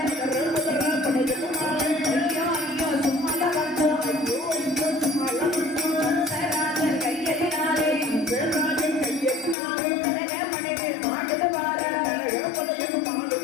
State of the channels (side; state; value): right; drops out; at 9.6 s